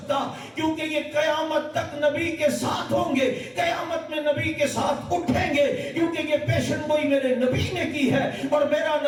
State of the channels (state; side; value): identical; both; correlation 1.00